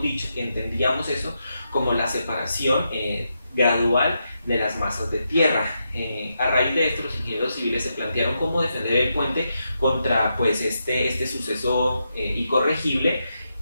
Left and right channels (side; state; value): both; inverted; correlation -0.84